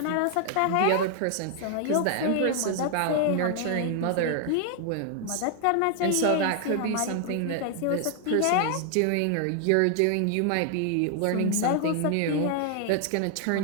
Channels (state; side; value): different; both; correlation 0.00